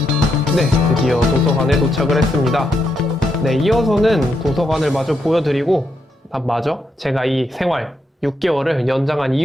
네, 드디어 도서관에 도착을 했습니다. 네, 이어서는 도서관을 마저 보여드리고 마저 제가 이 생활 6개월을 연장한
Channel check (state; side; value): normal; both; correlation 0.81